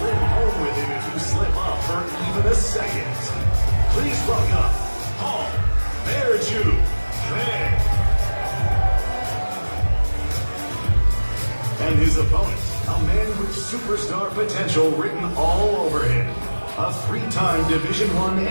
home with him if you slip up for even a second. Please welcome Paul Miočić. And his opponent, a man with superstar potential written all over him. A three-time Division I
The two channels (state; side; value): inverted; both; correlation -1.00